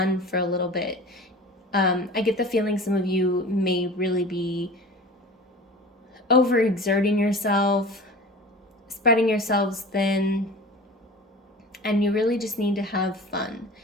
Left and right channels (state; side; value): normal; both; correlation 0.38